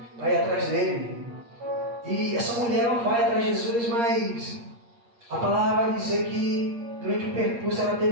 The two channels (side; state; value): left; late; 8.5 ms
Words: para ir atrás dele. E essa mulher ela vai atrás de Jesus, mas a palavra vai dizer que durante o percurso ela